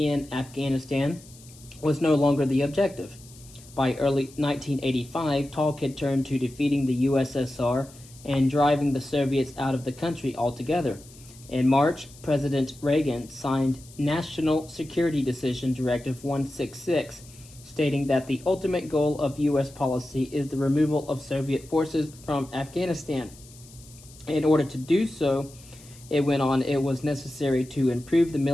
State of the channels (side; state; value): left; noise; hiss, 22 dB below the sound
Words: Afghanistan was no longer the objective. By early 1985, talk had turned to defeating the USSR and driving the Soviets out of the country altogether. In March, President Reagan signed National Security Decision Directive 166, stating that the ultimate goal of U.S. policy is the removal of Soviet forces from Afghanistan. In order to do so, it went on, it was necessary to improve the